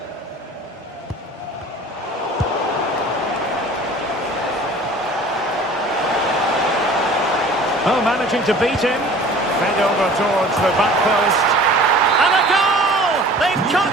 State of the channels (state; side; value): normal; both; correlation 0.46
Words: Oh, managing to beat him. Fed over towards the back post. And a goal! They've